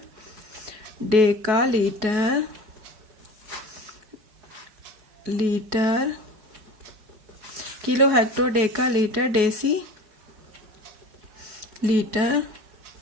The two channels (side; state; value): left; late; 4.7 ms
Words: deca litre, kilo hecto deca litre, deci litre,